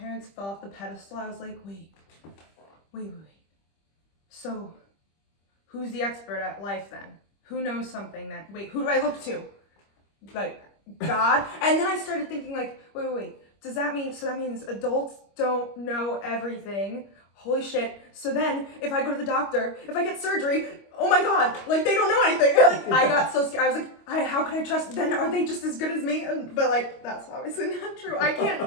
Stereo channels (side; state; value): right; late; 25 ms